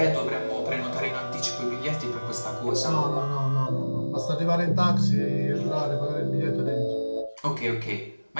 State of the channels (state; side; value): inverted; both; correlation -1.00